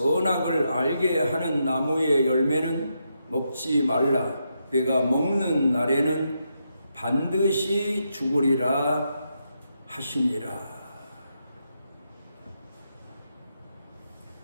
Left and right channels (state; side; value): inverted; both; correlation -0.82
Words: 알게 하는 나무의 열매는 먹지 말라. 내가 먹는 날에는 반드시 죽으리라 하시니라.